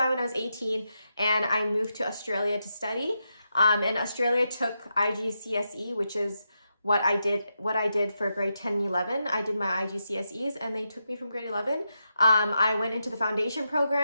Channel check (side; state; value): both; inverted; correlation -0.85